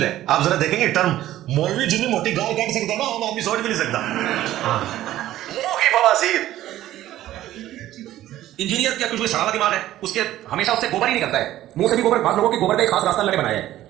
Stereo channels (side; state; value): left; quieter; 14.0 dB